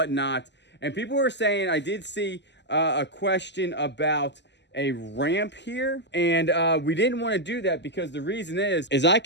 And people were saying, I did see a question about a ramp here, and we didn't want to do that because the reason is I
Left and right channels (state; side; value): late; right; 0.51 ms